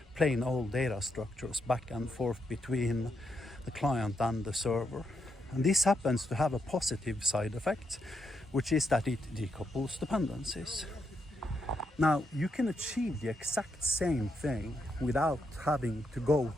plain old data structures back and forth between the client and the server. And this happens to have a positive side effect, which is that it decouples dependencies. Now, you can achieve the exact same thing without having to go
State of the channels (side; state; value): both; normal; correlation 0.81